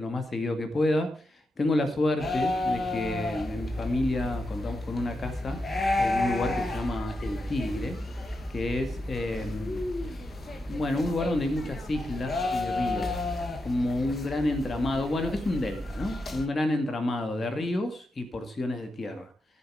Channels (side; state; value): both; normal; correlation 0.87